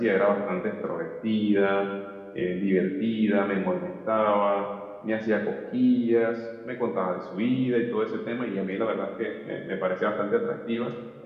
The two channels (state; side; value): identical; both; correlation 1.00